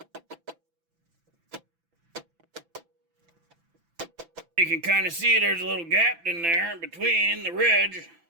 You can kind of see there's a little gap in there between the ridge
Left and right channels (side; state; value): left; late; 6.0 ms